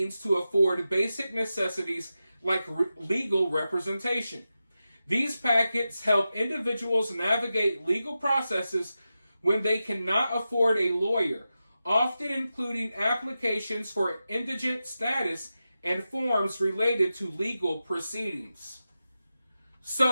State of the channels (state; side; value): inverted; both; correlation -0.92